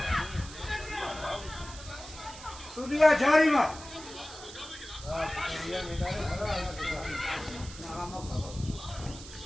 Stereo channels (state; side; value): noise; right; hiss, 14 dB below the sound